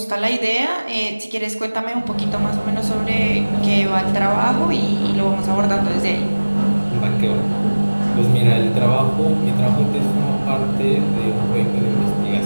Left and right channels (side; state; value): both; inverted; correlation -1.00